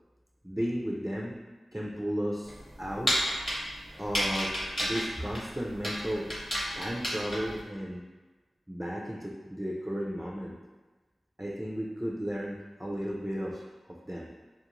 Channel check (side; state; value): both; normal; correlation 0.95